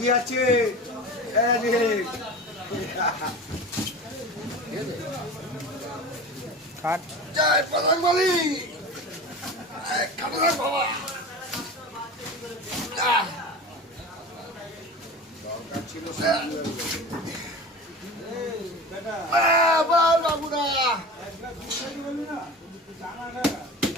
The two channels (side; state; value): both; normal; correlation 0.32